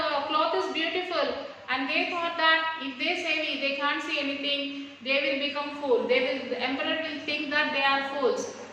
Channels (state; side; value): identical; both; correlation 1.00